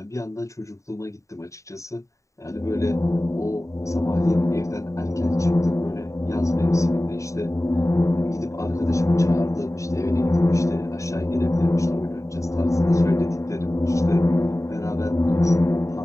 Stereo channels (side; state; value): right; late; 0.15 ms